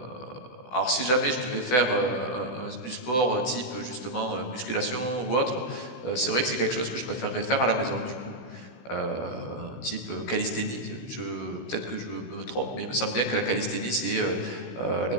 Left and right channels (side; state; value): right; late; 16 ms